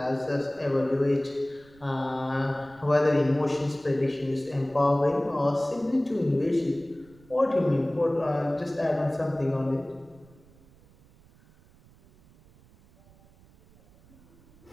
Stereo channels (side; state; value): right; noise; rumble, 27 dB below the sound